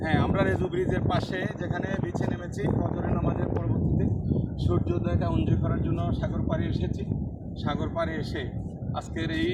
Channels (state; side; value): identical; both; correlation 1.00